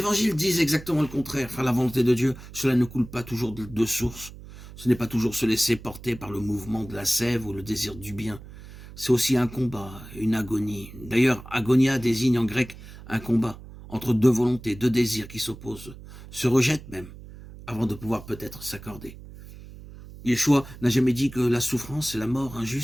disent exactement le contraire. Faire la volonté de Dieu, cela ne coule pas toujours de source. Ce n'est pas toujours se laisser porter par le mouvement de la sève ou le désir du bien. C'est aussi un combat, une agonie. D'ailleurs, agonia désigne en grec un combat entre deux volontés, deux désirs qui s'opposent, se rejettent même, avant de pouvoir peut-être s'accorder. Yeshua n'a jamais dit que la souffrance et la mort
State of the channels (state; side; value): noise; right; hum, 16 dB below the sound